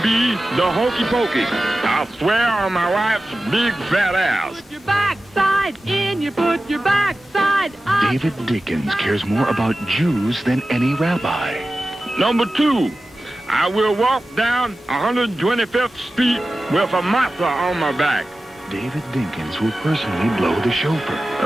be the hokey pokey. I swear on my wife's big fat ass. Put your backside in, you put your backside up. David Dinkins cares more about Jews than any rabbi. Number 2, I will walk down 125th Street with a matzah on my back. David Dinkins will personally blow the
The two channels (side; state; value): both; normal; correlation 0.95